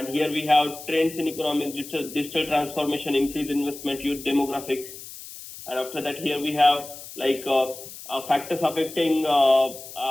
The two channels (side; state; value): left; noise; hiss, 14 dB below the sound